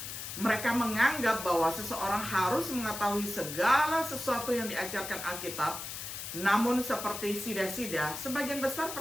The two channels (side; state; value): left; noise; hiss, 7 dB below the sound